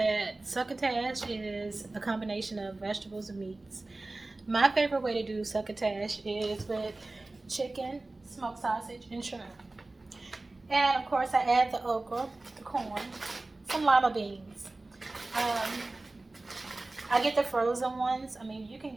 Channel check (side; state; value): left; quieter; 3.0 dB